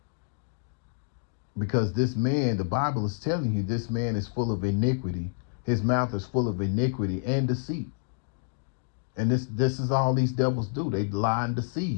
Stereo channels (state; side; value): silent; right; digital silence